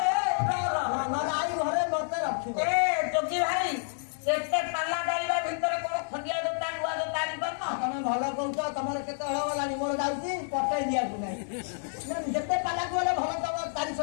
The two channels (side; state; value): right; silent; digital silence